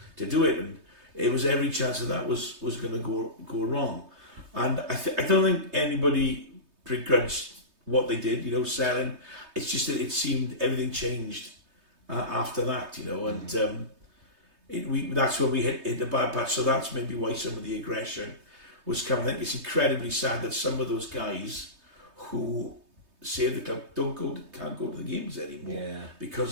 to do it, and it was every chance that was going to go wrong. And I don't think anybody begrudged what they did, you know, selling. It's just that it seemed everything changed after that, you know, and that's when we hit the bad patch. So that's maybe why some of the aggression was coming. I think it's incredibly sad that some of those guys who saved the club can't go to the games anymore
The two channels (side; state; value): left; late; 3.2 ms